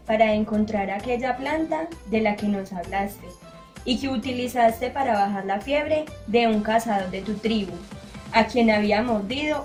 para encontrar aquella planta de la que nos hablaste y que utilizaste para bajar la fiebre de un cazador de tu tribu, a quien había mordido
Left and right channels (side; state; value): both; identical; correlation 1.00